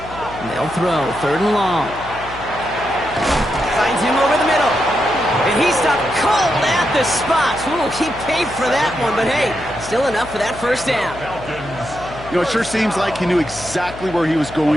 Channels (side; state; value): left; noise; hum, 15 dB below the sound